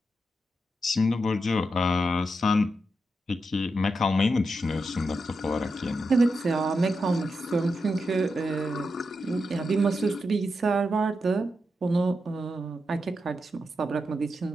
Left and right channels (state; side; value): normal; both; correlation 0.86